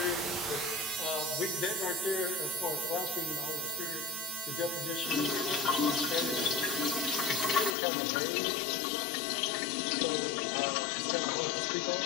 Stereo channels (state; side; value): drops out; right; at 7.8 s